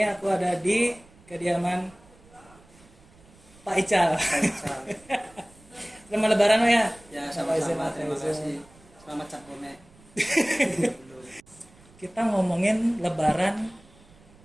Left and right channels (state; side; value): noise; right; rumble, 26 dB below the sound